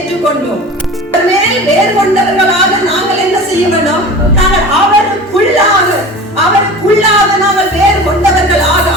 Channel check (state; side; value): normal; both; correlation 0.36